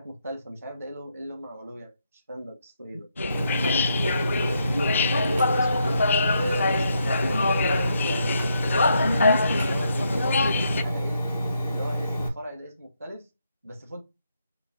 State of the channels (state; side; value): inverted; both; correlation -0.78